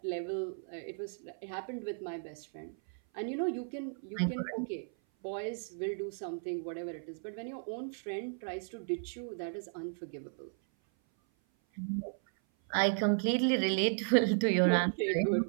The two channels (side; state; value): left; silent; 54 dB below the other